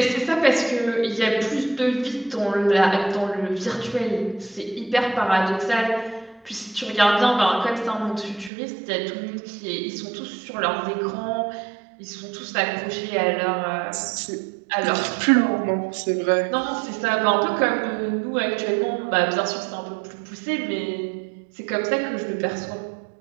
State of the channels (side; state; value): left; drops out; at 8.5 s